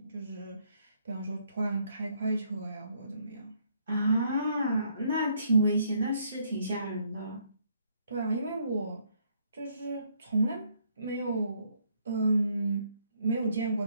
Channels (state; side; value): inverted; both; correlation -0.69